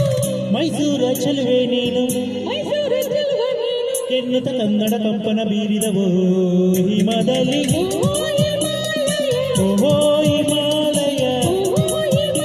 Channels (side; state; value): both; identical; correlation 1.00